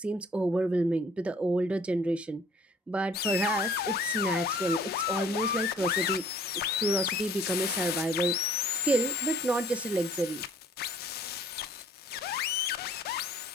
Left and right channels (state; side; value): normal; both; correlation 0.56